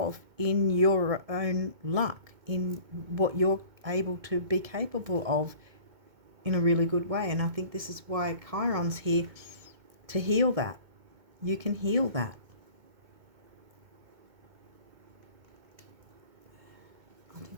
in your own luck, in what you're able to be capable of in a really good way. And I think this is why Chiron's here, to heal that. You can heal that. I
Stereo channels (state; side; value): late; left; 2.2 ms